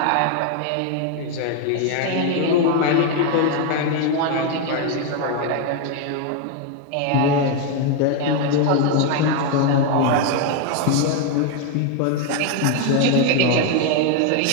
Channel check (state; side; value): different; both; correlation 0.01